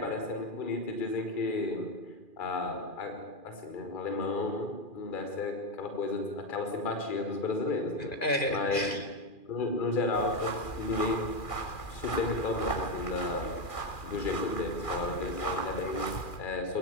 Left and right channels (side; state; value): right; late; 2.4 ms